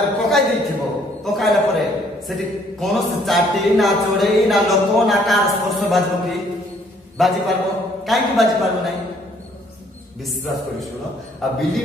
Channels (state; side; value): normal; both; correlation 0.63